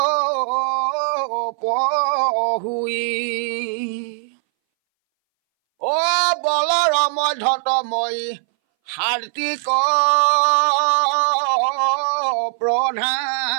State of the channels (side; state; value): left; silent; 62 dB below the other